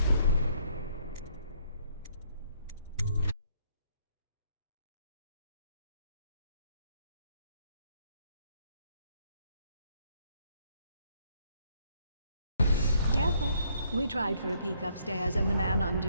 Careful. We tried for a peek upstairs, and the man on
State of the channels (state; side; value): inverted; both; correlation -0.68